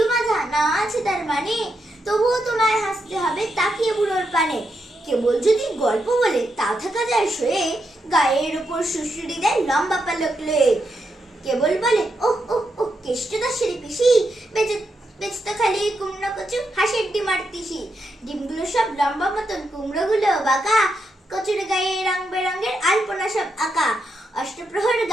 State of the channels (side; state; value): both; normal; correlation 0.83